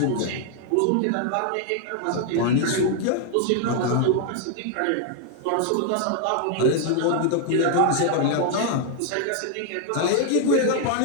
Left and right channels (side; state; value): both; different; correlation 0.00